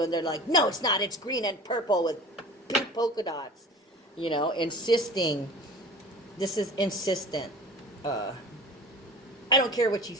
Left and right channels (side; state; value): both; normal; correlation 0.39